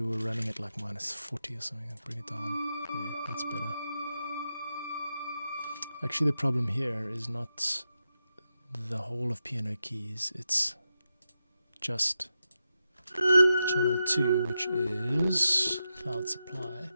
were running at like minus 40 or something. Bring it down. There, that's better. Actually, the problem here is not the whole of piano keys, it's just channel 2, which is cloud supply.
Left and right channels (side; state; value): both; inverted; correlation -0.88